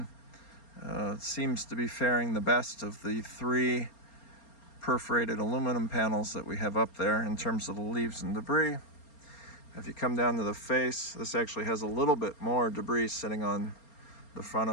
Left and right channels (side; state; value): right; late; 4.3 ms